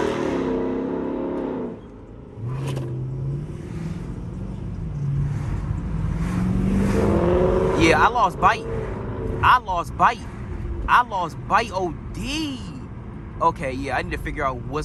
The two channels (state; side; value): identical; both; correlation 1.00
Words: Yeah, I lost bite. I lost bite OD. Okay, yeah, I need to figure out